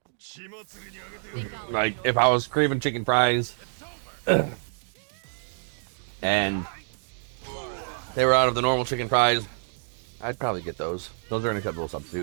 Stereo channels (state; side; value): silent; left; digital silence